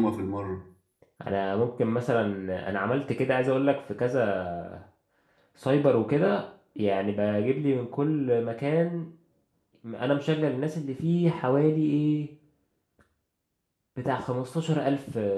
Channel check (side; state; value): both; identical; correlation 1.00